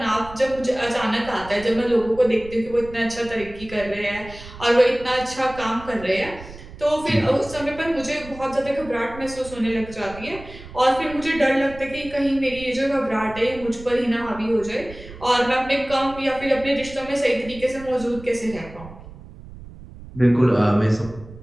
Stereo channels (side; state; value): right; noise; rumble, 16 dB below the sound